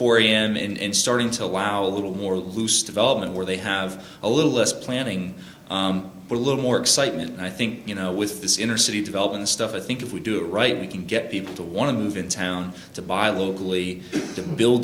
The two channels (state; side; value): identical; both; correlation 1.00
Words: a.m. and starting to allow a little more loose development where they have a little less planning. But a little more excitement. And I think, with this inner city development and stuff, I think if we do it right, we can get people to want to move in town, to buy locally, to build